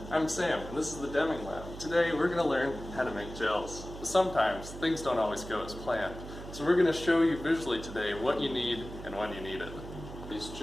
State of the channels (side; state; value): right; noise; hum, 12 dB below the sound